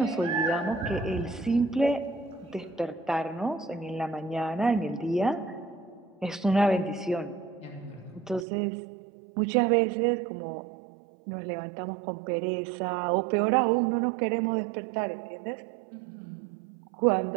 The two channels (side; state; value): left; drops out; at 8.5 s